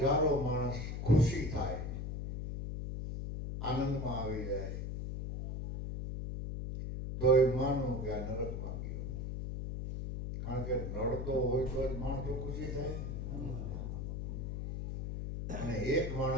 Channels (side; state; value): left; noise; hum, 4 dB below the sound